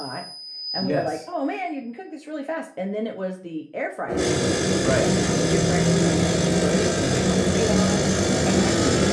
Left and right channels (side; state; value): both; identical; correlation 1.00